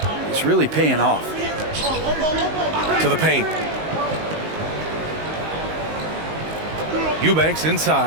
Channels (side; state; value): left; late; 19 ms